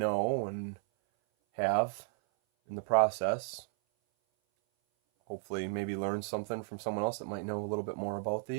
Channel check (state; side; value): silent; left; 55 dB below the other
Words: and have in the process. Hopefully maybe learn something from someone else that might know a little bit more about